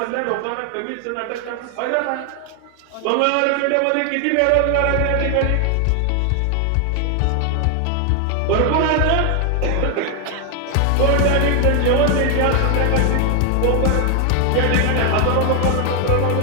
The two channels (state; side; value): different; both; correlation 0.00